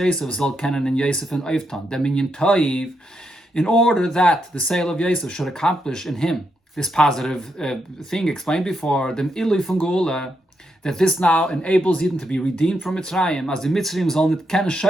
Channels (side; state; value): both; normal; correlation 0.81